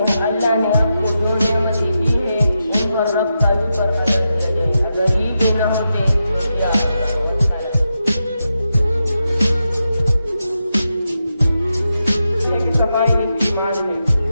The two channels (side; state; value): both; inverted; correlation -0.87